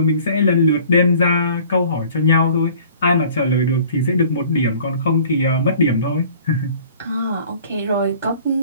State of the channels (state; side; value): inverted; both; correlation -0.50